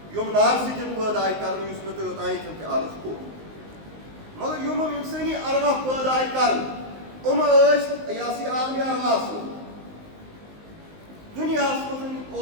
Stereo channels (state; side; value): late; left; 19 ms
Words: یِم نارٕ سۭتۍ پٲدٕ آیہِ کَرنہٕ یُس مےٚ تۄہہِ اوٚتانۍ تہِ عرض کوٚر مگر یِم اِنسٲنی ارواح پٲدٕ آیہِ کَرنہٕ یِم ٲسۍ یہِ ہسا یہِ عالمِ ارواحس منٛز دُنیاہس منٛز